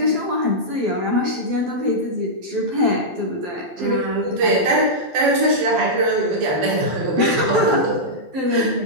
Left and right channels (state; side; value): late; left; 12 ms